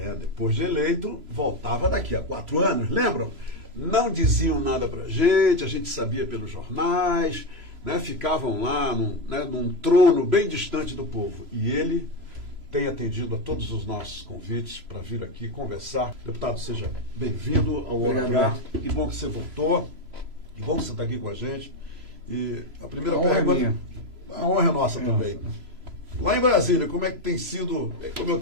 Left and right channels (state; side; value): late; left; 3.0 ms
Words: depois de eleito, voltava daqui a 4 anos, lembram? Não diziam nada pra gente, a gente sabia pelos jornais, né, ficavam lá num trono bem distante do povo. E ele tem atendido a todos os nossos convites para vir aqui conversar. Deputado, seja bem-vindo ao Hora H. Que bom que você voltou, que bom que você está aqui com a gente. E a primeira pergunta, a honra é nossa também. Lá em Brasília, como é que tem sido, como eu